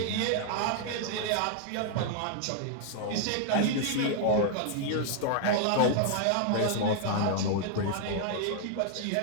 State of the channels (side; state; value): both; different; correlation -0.01